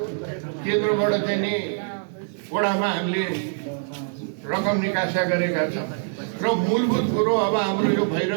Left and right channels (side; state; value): left; silent; digital silence